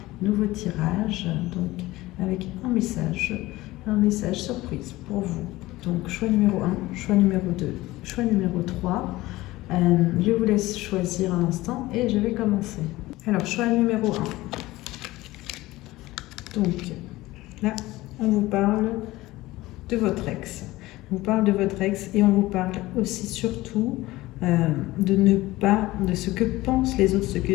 nouveau tirage, donc avec un message surprise pour vous. Donc choix numéro 1, choix numéro 2, choix numéro 3. Je vous laisse choisir un instant et je vais commencer. Alors choix numéro 1. Donc là, on vous parle de votre ex. On vous parle de votre ex et on vous parle aussi surtout de ce que pensent les autres, ce que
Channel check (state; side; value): quieter; right; 18.4 dB